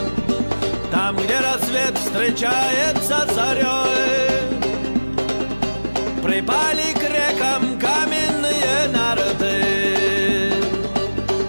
Там, где рассвет встречается с зарей, припали к рекам каменные нарты.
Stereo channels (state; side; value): inverted; both; correlation -1.00